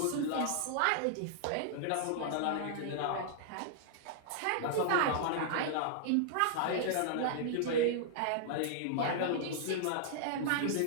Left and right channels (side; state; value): both; different; correlation -0.01